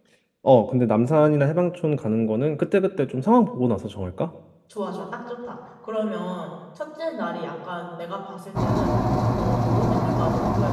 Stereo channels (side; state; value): both; identical; correlation 1.00